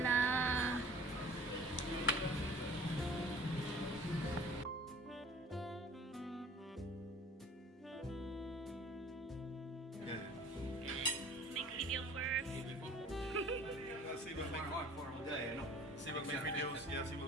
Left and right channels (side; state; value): both; normal; correlation 0.47